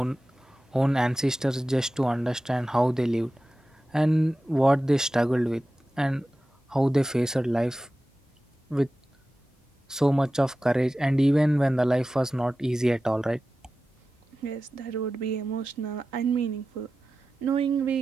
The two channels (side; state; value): both; normal; correlation 0.94